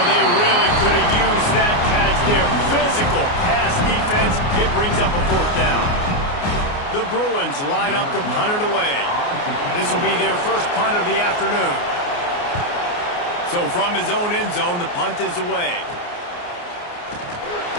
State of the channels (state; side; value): late; right; 29 ms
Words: they really could have used that catch there. Physical pass defense. It brings up a 4th down. The Bruins line up to punt it away. This will be their first punt of the afternoon. So from his own end zone, the punt is away.